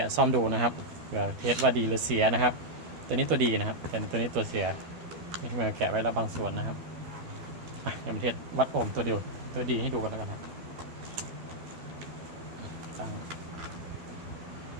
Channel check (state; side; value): late; left; 12 ms